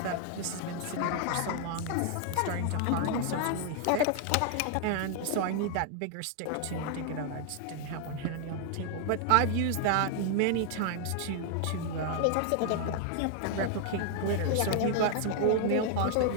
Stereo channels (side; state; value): both; different; correlation 0.00